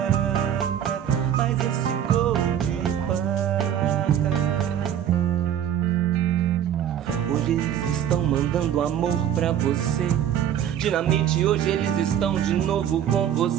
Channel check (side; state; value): left; quieter; 10.0 dB